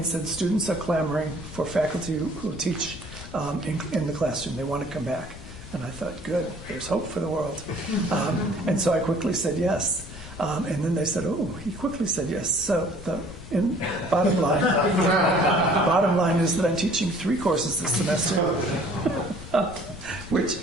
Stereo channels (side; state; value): left; noise; rumble, 14 dB below the sound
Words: said students are clamoring for faculty who teach in the classroom. They want to come back. And I thought, good, there's hope for the world. And so I quickly said yes. And then they said, oh, he quickly said yes. So bottom line is that I'm teaching 3 courses this semester, which,